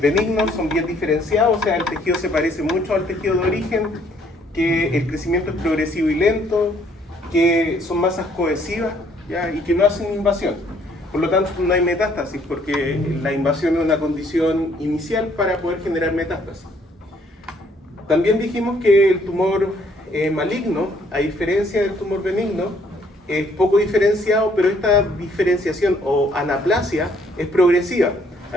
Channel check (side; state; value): both; normal; correlation 0.64